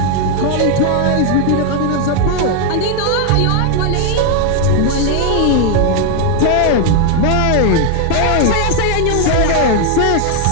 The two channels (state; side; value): different; both; correlation 0.00